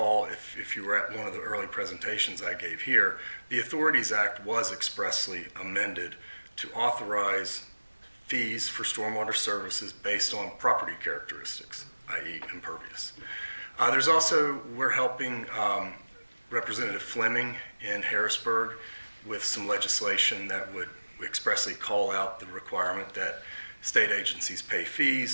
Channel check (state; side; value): inverted; both; correlation -1.00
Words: if you were at one of the early presentations I gave here, the Authorities Act was expressly amended to authorize fees for stormwater services based on property characteristics, i.e. impervious. There's also, we're helping Representative Fleming in Harrisburg with some legislation that would expressly call out the requirement that state agencies pay